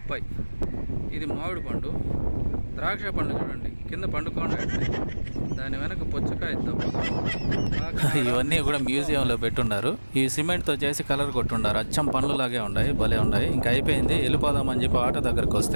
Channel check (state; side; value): inverted; both; correlation -1.00